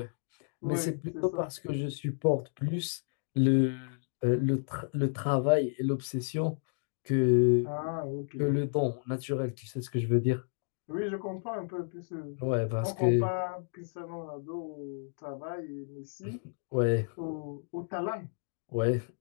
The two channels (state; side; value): silent; right; digital silence